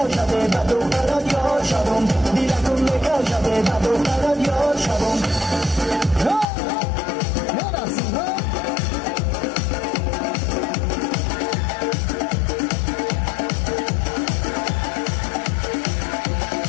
به دخترت یار شوم دیلتون میکشده به دخترت یار شوم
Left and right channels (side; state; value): right; drops out; at 6.5 s